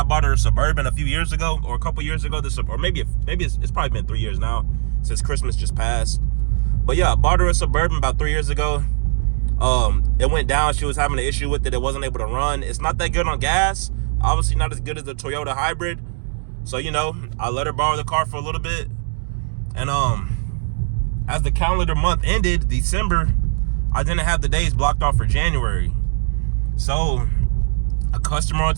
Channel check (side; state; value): left; silent; 66 dB below the other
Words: bought her a Suburban a few years ago, or a couple years ago, or maybe it's probably been 3 years now since Christmas just passed. But yeah, I bought her a Suburban about 3 years ago. It went down. She was having an issue with it. It wasn't able to run. It's not that good on gas. Obviously not as good as the Toyota hybrid. So, I let her borrow the car for a little bit. And as the calendar month ended, December, I didn't have the days blocked off for January. So a customer on